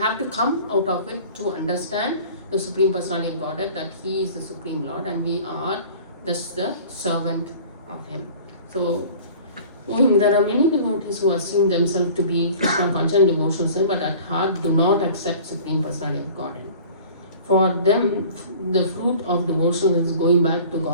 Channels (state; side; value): inverted; both; correlation -0.45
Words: to come out of it to understand the Supreme Personality of Godhead, that he is the Supreme Lord and we are just the servant of him. So There are many devotees who assume themselves to be Krishna conscious and devotional, but at heart do not accept Supreme Personality of Godhead. For them, the fruit of devotion is going back to